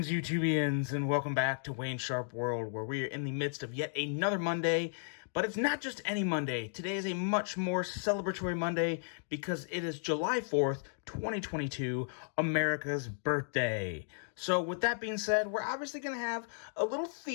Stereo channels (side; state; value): right; silent; digital silence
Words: YouTubians, and welcome back to Wayne Sharp World, where we are in the midst of yet another Monday. But it's not just any Monday. Today is a much more celebratory Monday because it is July 4th, 2022, America's birthday. So with that being said, we're obviously going to have a little